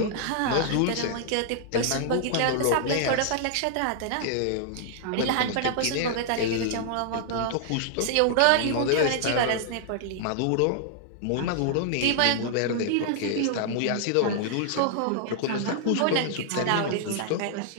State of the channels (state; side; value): different; both; correlation -0.01